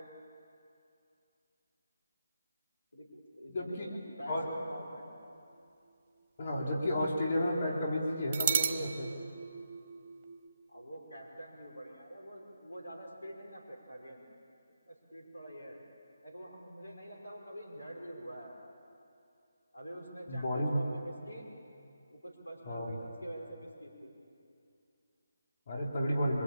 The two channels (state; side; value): inverted; both; correlation -0.84